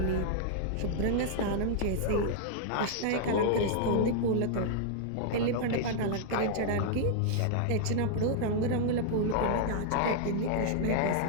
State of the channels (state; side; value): different; both; correlation -0.01